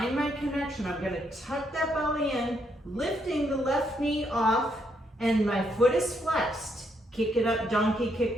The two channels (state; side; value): normal; both; correlation 0.75